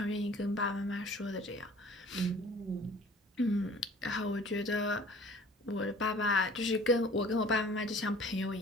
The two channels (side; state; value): both; normal; correlation 0.49